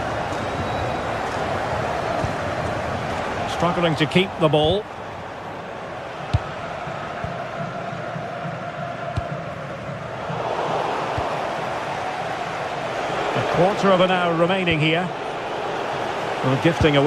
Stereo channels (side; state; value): both; identical; correlation 1.00